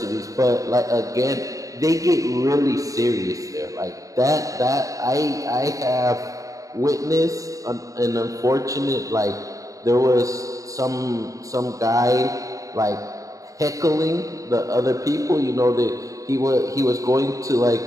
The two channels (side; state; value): left; late; 0.16 ms